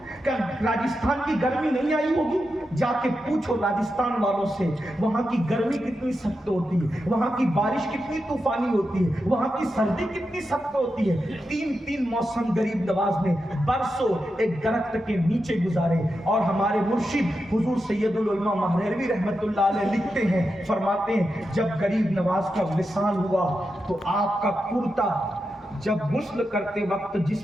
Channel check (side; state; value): both; normal; correlation 0.88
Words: کیا راجستھان کی گرمی نہیں آئی ہوگی؟ جا کے پوچھو راجستھان والوں سے، وہاں کی گرمی کتنی سخت ہوتی ہے، وہاں کی بارش کتنی طوفانی ہوتی ہے، وہاں کی سردی کتنی سخت ہوتی ہے۔ 3 موسم غریب نواز نے برسوں ایک درخت کے نیچے گزارے۔ اور ہمارے مرشد حضور سید العلماء مہروی رحمت اللہ علیہ لکھتے ہیں، فرماتے ہیں جب غریب نواز کا وصال ہوا تو آپ کا کرتا جب غسل کرتے وقت